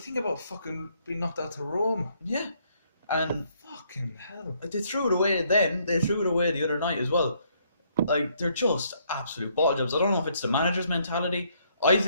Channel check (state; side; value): inverted; both; correlation -0.69